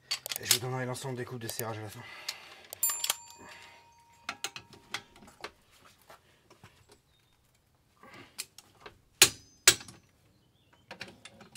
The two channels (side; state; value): both; identical; correlation 1.00